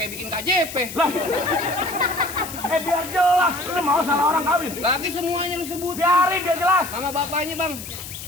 bikin KJP? Lah. Biar jelas. Lu mau salah orang kawin. Lagi semuanya lu sebut. Biarin biar jelas. Sama bapaknya bang.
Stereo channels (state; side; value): noise; left; hiss, 11 dB below the sound